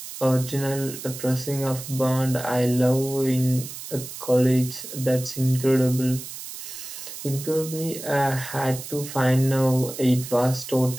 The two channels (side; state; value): right; noise; hiss, 11 dB below the sound